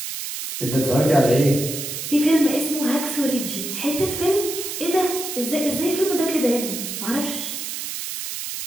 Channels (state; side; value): noise; right; hiss, 6 dB below the sound